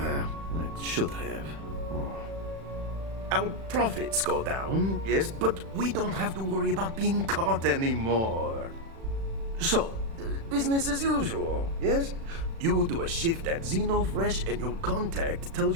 it should have. Our profits go down, yes, but we don't have to worry about being caught anymore. So, business as usual, yes? You do a shift at Xenofresh and your contact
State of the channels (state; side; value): late; left; 36 ms